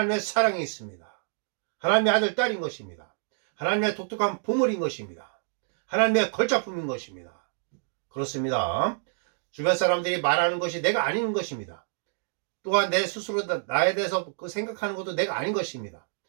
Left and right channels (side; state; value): left; silent; digital silence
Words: 사랑이 있습니다. 하나님의 아들 딸인 것입니다. 하나님의 독특한 보물인 것입니다. 하나님의 걸작품인 것입니다. 그렇습니다. 주변 사람들이 말하는 것이 내가 아닌 것입니다. 또한 내 스스로 나에 대해서 그 생각하는 것도 내가 아닌 것입니다.